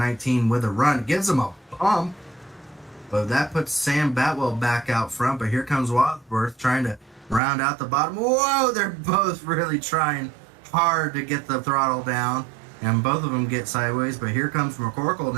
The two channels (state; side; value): drops out; left; at 7.4 s